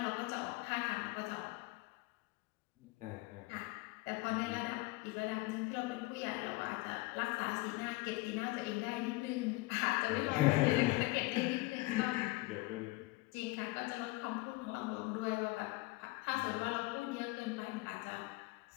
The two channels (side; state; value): right; quieter; 22.0 dB